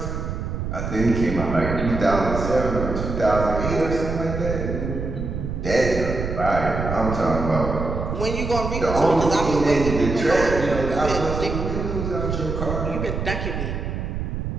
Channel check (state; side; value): noise; right; rumble, 4 dB below the sound